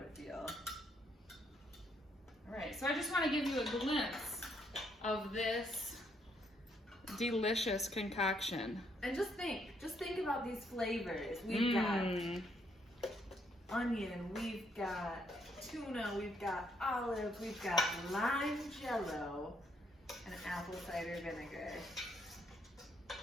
feel. All right, so I just want to give you a glimpse of this delicious concoction. And just think about these flavors. We've got onion, we've got tuna, we've got olive, we've got lime Jell-O, and apple cider vinegar.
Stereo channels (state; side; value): normal; both; correlation 0.72